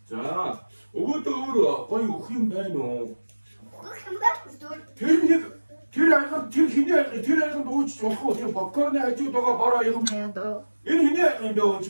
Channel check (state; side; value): inverted; both; correlation -1.00